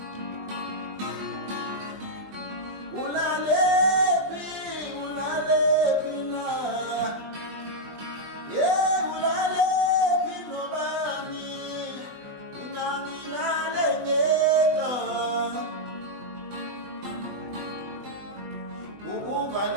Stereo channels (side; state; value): left; late; 20 ms